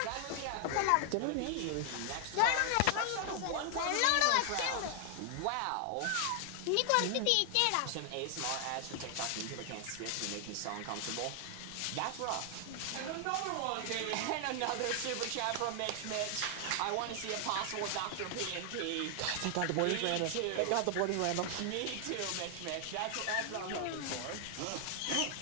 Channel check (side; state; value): both; different; correlation 0.00